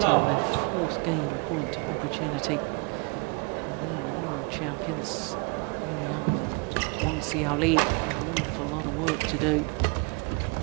on their 4th game point opportunity. And now the world champions Young and Wang Xiaoli, an awful lot of work to do.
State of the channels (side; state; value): left; quieter; 32.7 dB